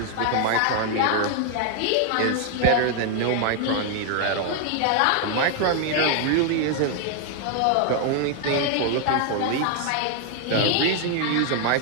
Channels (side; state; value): both; different; correlation 0.00